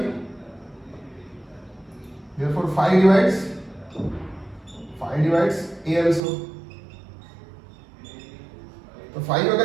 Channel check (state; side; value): drops out; left; at 6.2 s